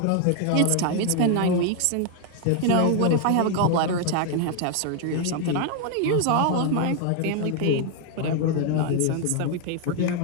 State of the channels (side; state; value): both; different; correlation 0.00